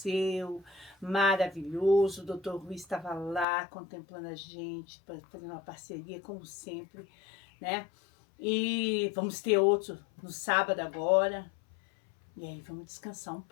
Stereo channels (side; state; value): right; drops out; at 3.5 s